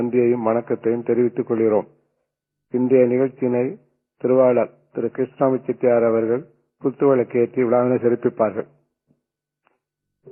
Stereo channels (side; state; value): both; identical; correlation 1.00